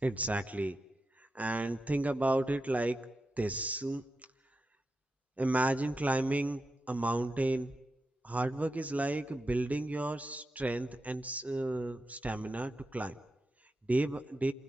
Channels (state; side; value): normal; both; correlation 0.89